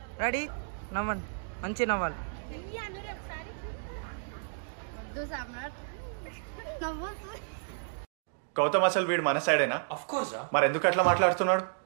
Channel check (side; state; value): left; silent; digital silence